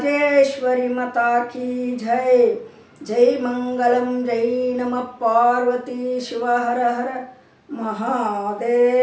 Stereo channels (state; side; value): identical; both; correlation 1.00